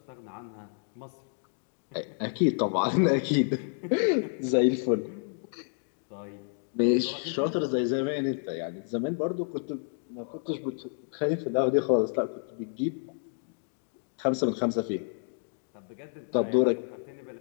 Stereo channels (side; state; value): right; silent; 58 dB below the other